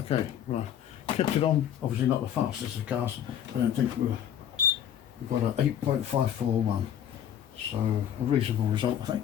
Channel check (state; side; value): quieter; right; 10.0 dB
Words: right. Kept it on, obviously not the fastest of cars. I don't think we've got an 8.541. So a reasonable result, I